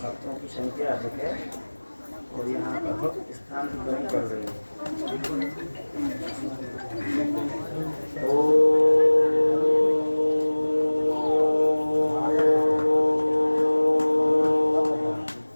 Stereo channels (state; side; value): inverted; both; correlation -1.00